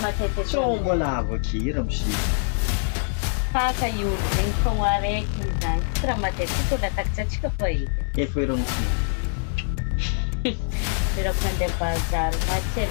matete So mbola avakira misy. Faka io zegny fogna araiky zany. Tsy raha matetika olo atakitsatsika fa edy. Efa ero mosina. Birako mandeha bazary. Maty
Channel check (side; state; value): right; silent; digital silence